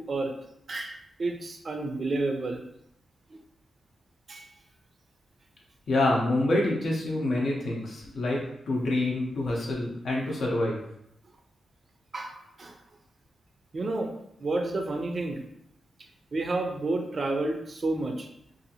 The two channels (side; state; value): both; normal; correlation 0.86